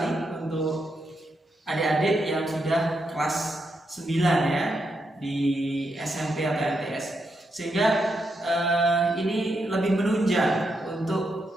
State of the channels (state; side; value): normal; both; correlation 0.82